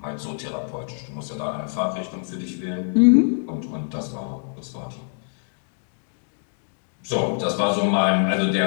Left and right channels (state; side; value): silent; right; digital silence